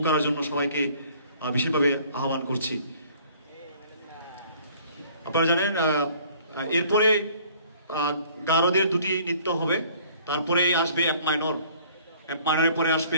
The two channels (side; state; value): both; inverted; correlation -0.55